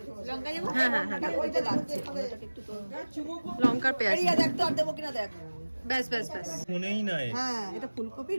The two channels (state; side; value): inverted; both; correlation -1.00